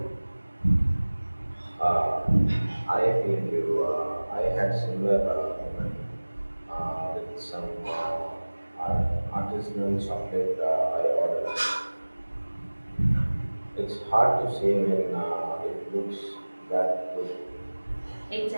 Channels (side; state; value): both; inverted; correlation -1.00